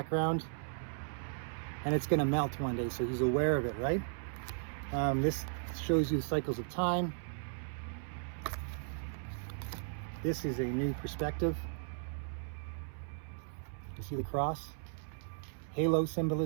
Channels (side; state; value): left; silent; 54 dB below the other